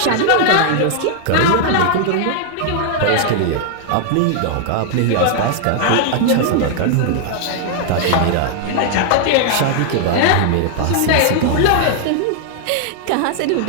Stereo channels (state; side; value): different; both; correlation 0.00